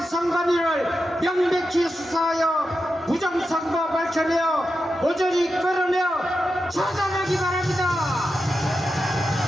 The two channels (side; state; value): both; normal; correlation 0.89